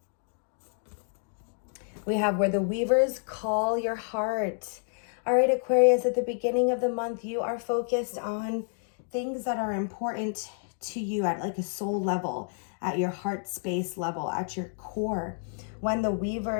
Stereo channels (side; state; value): right; silent; digital silence